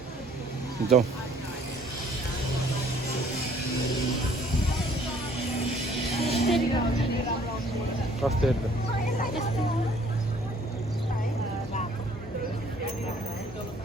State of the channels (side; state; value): both; normal; correlation 0.59